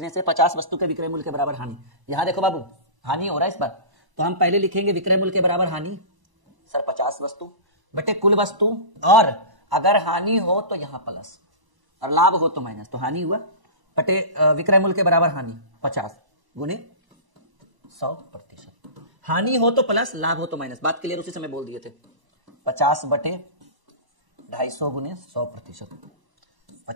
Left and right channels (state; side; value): late; left; 1.0 ms